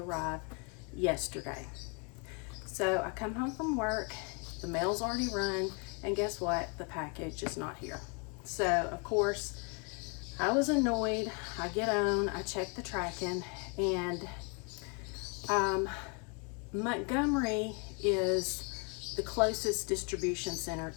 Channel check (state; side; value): quieter; right; 35.3 dB